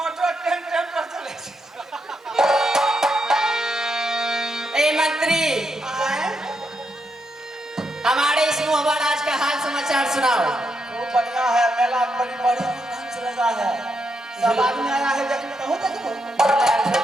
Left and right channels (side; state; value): both; normal; correlation 0.81